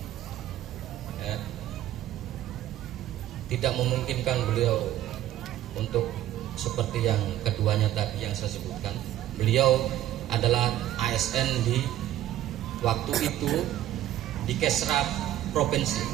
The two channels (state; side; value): quieter; left; 13.1 dB